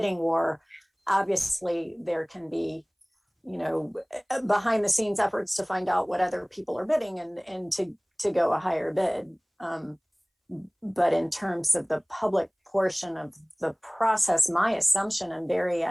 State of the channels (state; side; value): identical; both; correlation 1.00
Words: war. Obviously, there can be, behind the scenes efforts to find out what other people are bidding and to go a higher bid. But in terms of the public portion of the process, my assumption, and Barry,